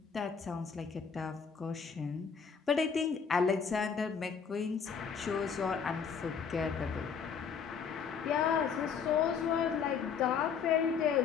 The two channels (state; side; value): quieter; right; 6.4 dB